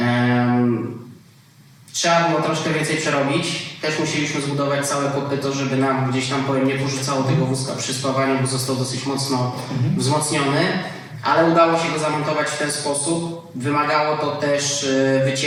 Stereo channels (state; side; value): identical; both; correlation 1.00